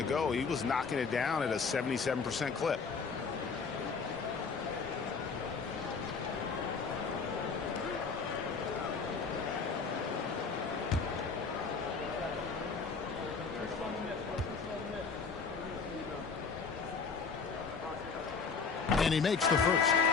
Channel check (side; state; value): right; quieter; 5.1 dB